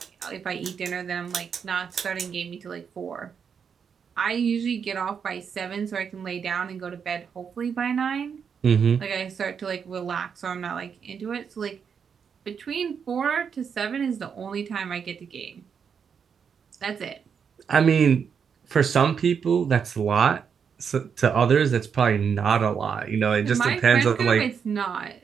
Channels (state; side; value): quieter; left; 6.8 dB